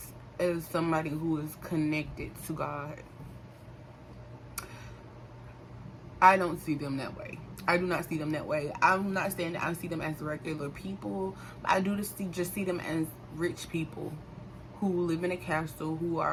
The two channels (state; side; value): identical; both; correlation 1.00